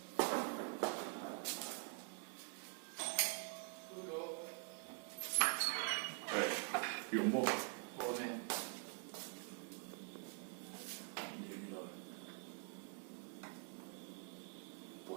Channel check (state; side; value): quieter; left; 39.4 dB